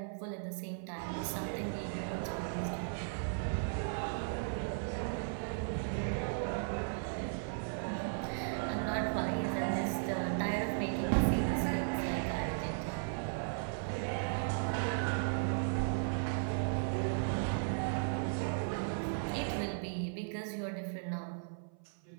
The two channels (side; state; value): left; silent; 53 dB below the other